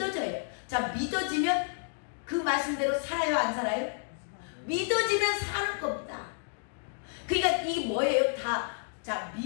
자, 믿어지면 그 말씀대로 살아요, 안 살아요? 믿어지면 사는 겁니다. 그러니까 이게 뭐예요? 자,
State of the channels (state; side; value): silent; right; 57 dB below the other